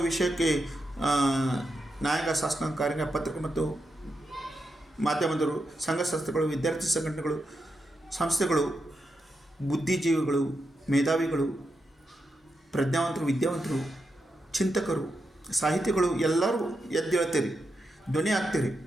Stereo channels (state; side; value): normal; both; correlation 0.86